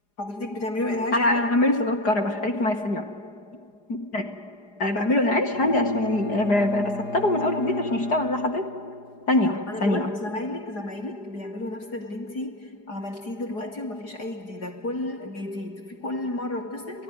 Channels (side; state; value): right; late; 4.9 ms